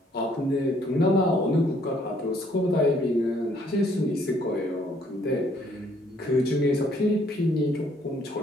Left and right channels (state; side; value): normal; both; correlation 0.65